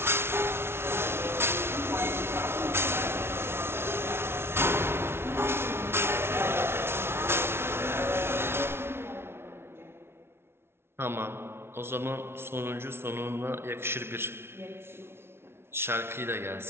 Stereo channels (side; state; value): left; late; 0.12 ms